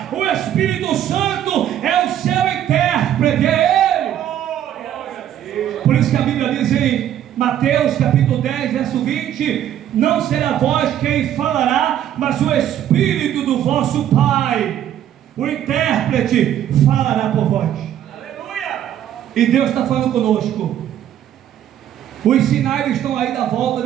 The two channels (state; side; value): quieter; left; 10.9 dB